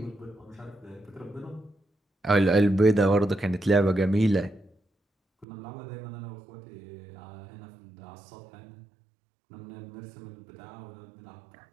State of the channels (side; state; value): left; drops out; at 5.5 s